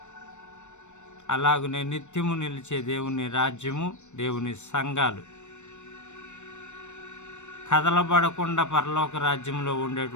అలాగనే నిత్యము నిలిచే దేవుని రాజ్యము, దేవుని సంఘాలు, కదలబడకుండా పరలోక రాజ్యంలో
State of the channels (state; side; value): late; right; 0.84 ms